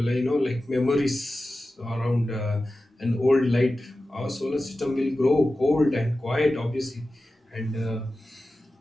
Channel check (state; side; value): normal; both; correlation 0.94